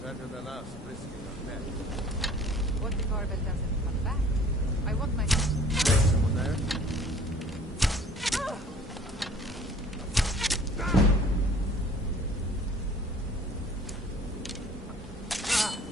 Better than us risking our neck. What if Arbel doesn't come back? I want my... Someone there?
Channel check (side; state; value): both; normal; correlation 0.51